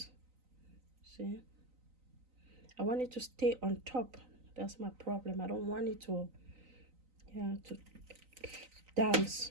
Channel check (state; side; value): late; left; 3.9 ms